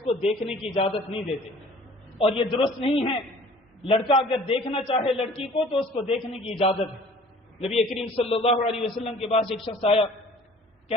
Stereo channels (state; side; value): normal; both; correlation 0.50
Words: کو دیکھنے کی اجازت نہیں دیتے، اور یہ درست نہیں ہے. لڑکا اگر دیکھنا چاہے لڑکی کو تو اس کو دیکھنے کی اجازت ہے. نبی کریم صلی اللہ علیہ وسلم کے پاس ایک شخص آیا،